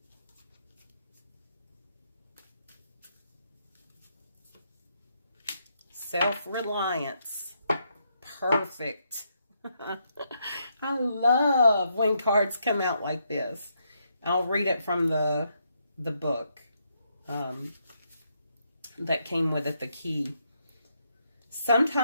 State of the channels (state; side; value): inverted; both; correlation -0.78